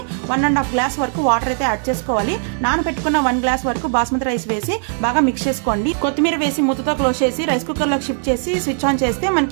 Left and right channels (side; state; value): left; silent; digital silence